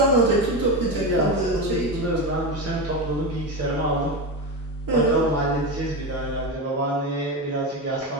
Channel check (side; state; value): both; normal; correlation 0.18